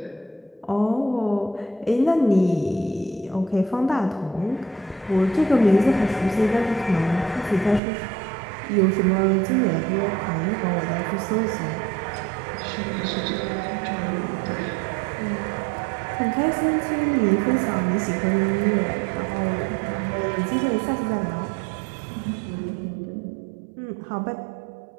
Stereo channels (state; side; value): drops out; left; at 7.8 s